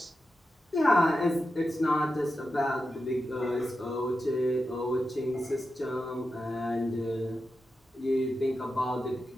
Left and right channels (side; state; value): both; normal; correlation 0.90